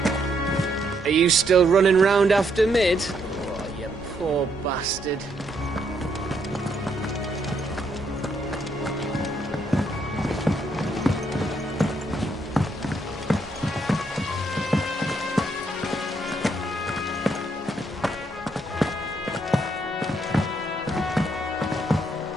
Are you still running round after Mid? Oh, you poor bastard.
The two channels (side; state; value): both; normal; correlation 0.74